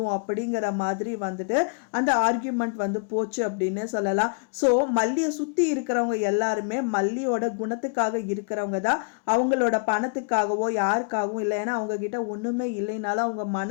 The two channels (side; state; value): right; quieter; 39.3 dB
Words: அப்படிங்கிற மாதிரி வந்துட்டு அந்த ஆர்கியூமெண்ட் வந்து போச்சு அப்படின்னே சொல்லலாம். ஸோ மல்லியை சுற்றி இருக்கிறவங்க எல்லாருமே மல்லியோட குணத்துக்காக இருக்கிறவங்க தான், அவங்களோட பணத்துக்காகவோ யாருக்காகவும் இல்லை. ஏன்னா அவங்க கிட்ட ஒண்ணுமே இல்லைனாலும் அவங்க